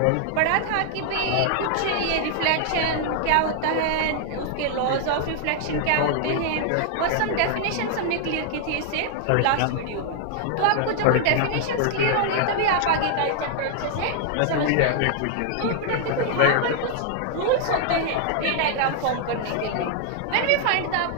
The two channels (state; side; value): different; both; correlation 0.00